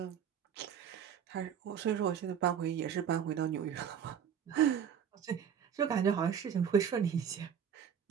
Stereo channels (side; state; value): left; quieter; 8.2 dB